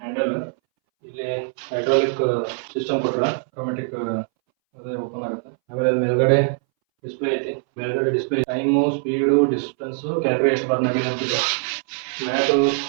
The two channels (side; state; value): left; silent; 62 dB below the other